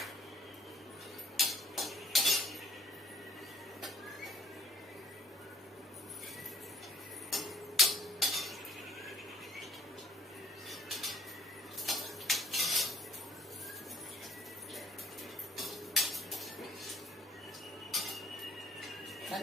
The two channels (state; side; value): normal; both; correlation 0.58